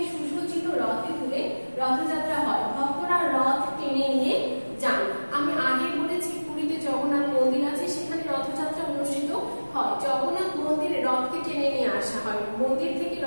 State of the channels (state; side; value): inverted; both; correlation -1.00